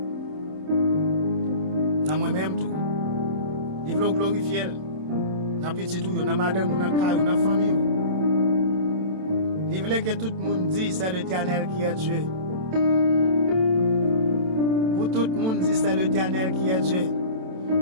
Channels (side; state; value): left; late; 27 ms